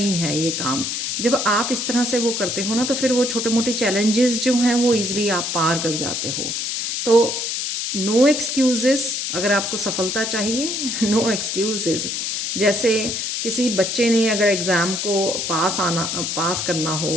है ये काम। जब आप इस तरह से वो करते हो ना, तो फिर वो छोटे मोटे चैलेंजेस जो हैं वो इजीली आप पार कर जाते हो। तो नो एक्सक्यूजेस, अगर आपको सफलता चाहिए नो एक्सक्यूजेस। जैसे किसी बच्चे ने अगर एग्ज़ाम को पास करना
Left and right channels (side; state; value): left; noise; hiss, 2 dB below the sound